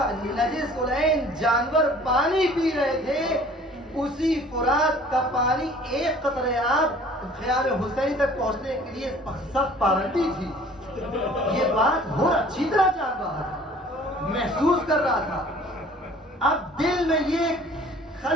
نجس العین جانور پانی پی رہے تھے اسی فرات کا پانی ایک قطرے آب خیال حسین تک پہنچنے کے لیے سخت پابندی تھی. یہ بات حر اچھی طرح جان رہا تھا, محسوس کر رہا تھا. اب دل میں یہ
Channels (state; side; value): normal; both; correlation 0.51